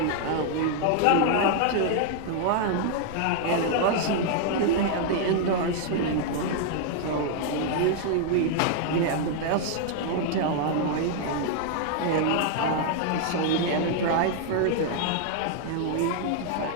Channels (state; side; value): different; both; correlation 0.00